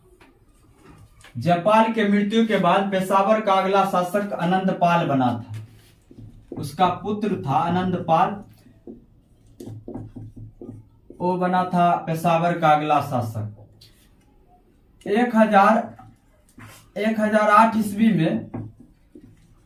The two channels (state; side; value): identical; both; correlation 1.00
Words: जापाल के मृत्यु के बाद पेशावर का अगला शासक आनंदपाल बना था। उसका पुत्र था आनंदपाल, वो बना था पेशावर का अगला शासक। 1008 ईस्वी में